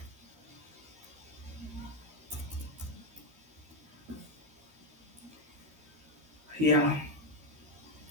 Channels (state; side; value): late; left; 13 ms